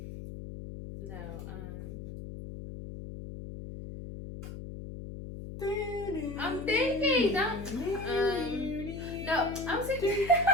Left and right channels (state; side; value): noise; left; hum, 9 dB below the sound